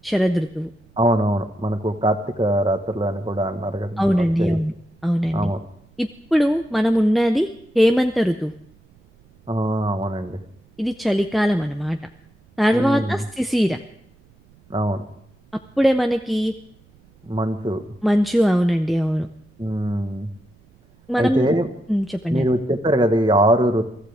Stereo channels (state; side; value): noise; right; rumble, 30 dB below the sound